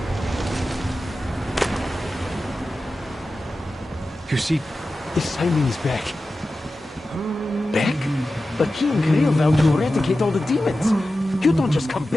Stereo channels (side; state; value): both; normal; correlation 0.94